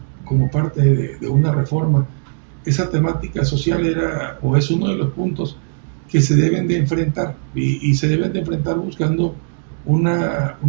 como parte de una reforma, esa temática social era o es uno de los puntos que se deben de enfrentar y se deben de enfrentar buscando una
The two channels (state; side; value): silent; left; 67 dB below the other